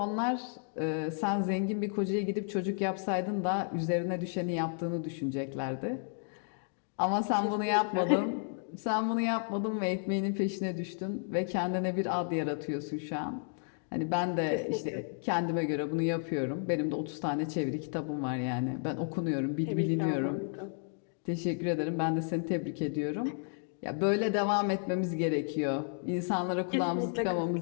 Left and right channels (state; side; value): silent; right; 56 dB below the other